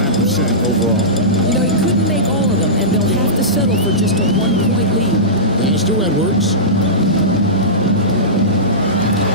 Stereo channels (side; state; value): both; normal; correlation -0.18